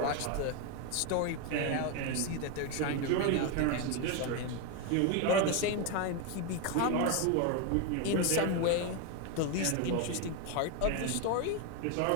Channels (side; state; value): both; different; correlation 0.02